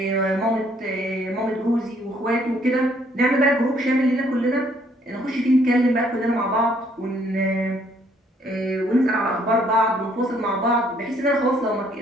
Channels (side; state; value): both; normal; correlation 0.65